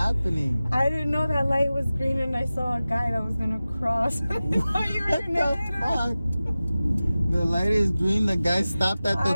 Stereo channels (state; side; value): inverted; both; correlation -0.96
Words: I didn't know that light was green and I saw a guy that was gonna cross. I thought you were gonna hit him. Fuck? The light is green, the guy stopped at